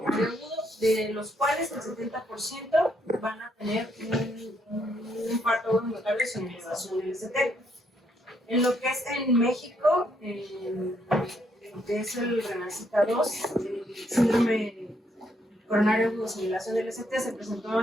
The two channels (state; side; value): normal; both; correlation 0.73